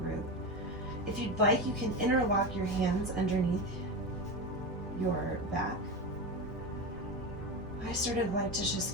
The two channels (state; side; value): normal; both; correlation 0.20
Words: root. If you'd like, you can interlock your hands underneath your back. I sort of like to